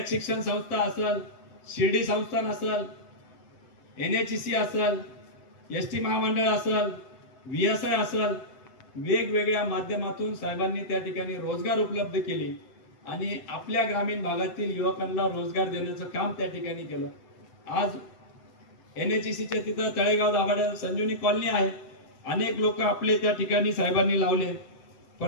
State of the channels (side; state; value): right; late; 7.9 ms